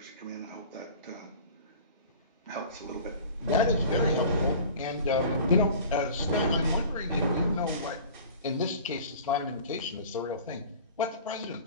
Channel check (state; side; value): inverted; both; correlation -0.42